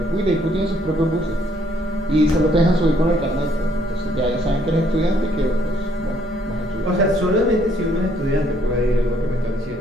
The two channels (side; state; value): both; normal; correlation 0.67